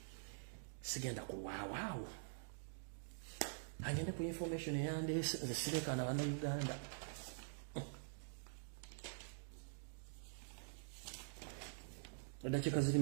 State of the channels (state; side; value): silent; left; digital silence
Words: sigenda kuwaawo agende ku information yande zisireka na bana Uganda. Dakika ziri